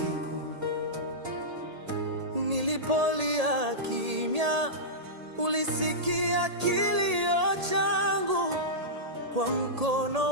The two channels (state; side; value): late; left; 1.8 ms